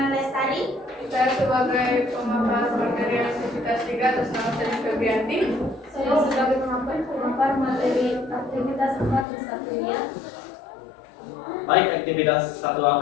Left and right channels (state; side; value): drops out; right; at 9.2 s